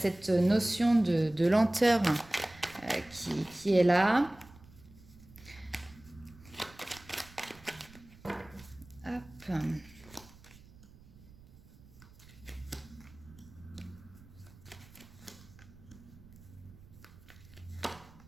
notion de lenteur qui est là. Hop.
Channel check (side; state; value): right; noise; rumble, 22 dB below the sound